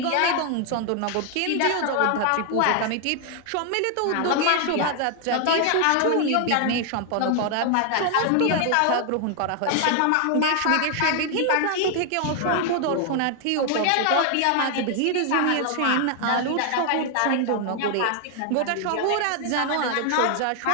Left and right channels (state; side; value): different; both; correlation 0.00